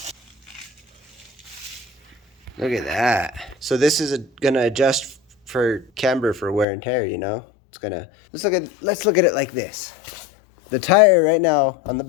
Look at that. So this is gonna adjust for camber for wear and tear, you know? It's gonna, let's look at it like this. The tire right now on the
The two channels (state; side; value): drops out; right; at 6.7 s